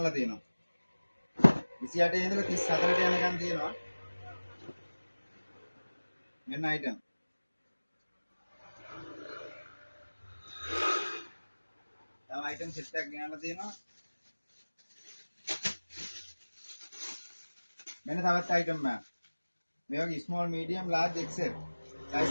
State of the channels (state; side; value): inverted; both; correlation -1.00